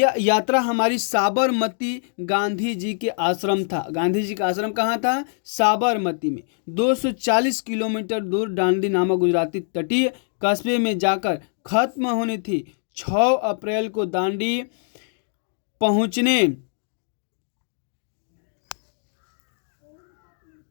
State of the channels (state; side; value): silent; right; 63 dB below the other